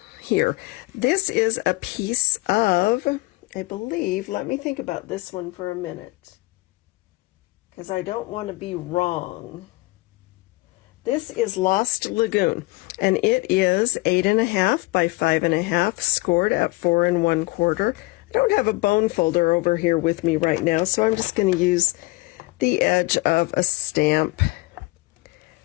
here. This is a piece of, I believe, let me think about this one for a minute, because I don't want to be wrong. This is Lost Lagoon, and it is 8 1/2 by 5 1/2, scored at 4 1/4. I don't have a bone folder over here with me right now, so I'm just going to use the edge of a stamp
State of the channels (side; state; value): right; quieter; 22.7 dB